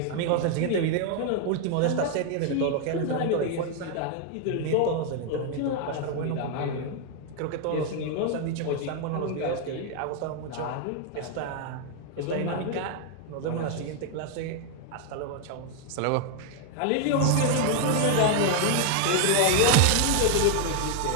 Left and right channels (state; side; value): different; both; correlation 0.00